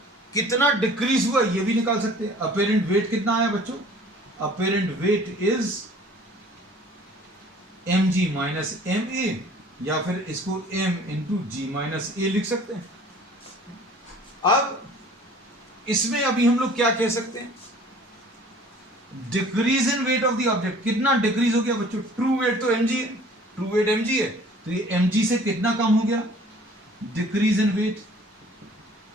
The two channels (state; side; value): normal; both; correlation 0.50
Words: कितना डिक्रीज हुआ ये भी निकाल सकते हैं। apparent weight कितना आया बच्चों, apparent weight is mg minus ma, या फिर इसको m इंटू जी माइनस ए लिख सकते हैं। अब इसमें अभी हम लोग क्या कह सकते हैं, decrease in weight of the object. कितना डिक्रीज हो गया बच्चों, ट्रू वेट तो mg है, ट्रू वेट mg है, तो ये mg से कितना कम हो गया, decrease in weight